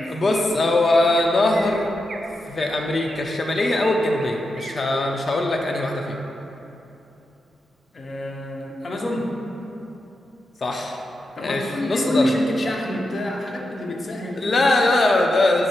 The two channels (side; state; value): both; normal; correlation 0.87